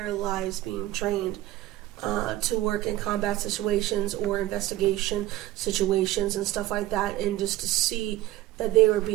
lives being trained to work in combat situations or investigation situations and stuff like that, and just to see that they were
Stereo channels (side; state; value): left; quieter; 15.5 dB